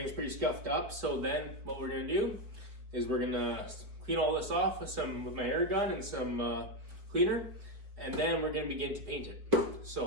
pretty scuffed up. So then what we're gonna do is we're gonna clean all this off with my air gun and some cleaner, and then we're gonna begin to paint it.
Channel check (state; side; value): late; left; 4.5 ms